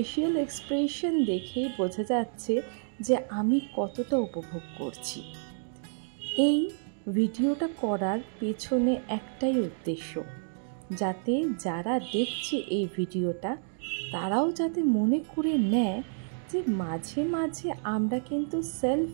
এক্সপ্রেশন দেখেই বোঝা যাচ্ছে যে আমি কতটা উপভোগ করছি। এই ভিডিওটা করার পেছনে একটাই উদ্দেশ্য, যাতে যারা দেখছে এই ভিডিওটা তারাও যাতে মনে করে নেয় যে মাঝে মাঝে আমরা কিন্তু সেলফ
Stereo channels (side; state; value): left; silent; digital silence